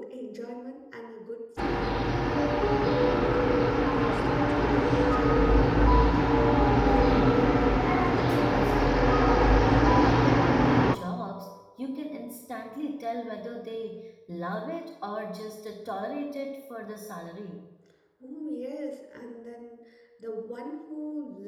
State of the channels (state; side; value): identical; both; correlation 1.00